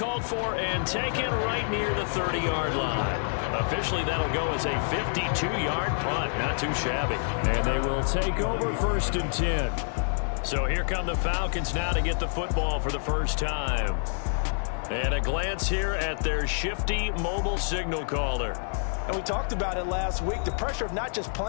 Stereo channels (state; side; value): silent; right; 60 dB below the other